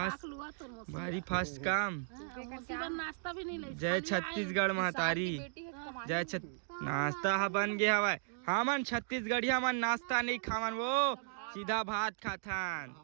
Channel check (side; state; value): left; silent; digital silence